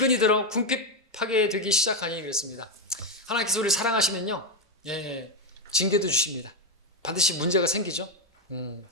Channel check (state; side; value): normal; both; correlation 0.06